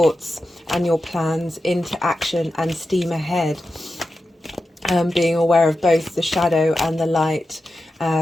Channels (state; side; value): normal; both; correlation 0.91